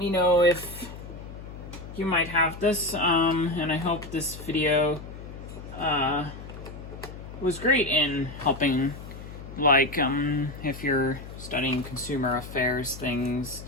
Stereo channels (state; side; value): noise; left; hum, 13 dB below the sound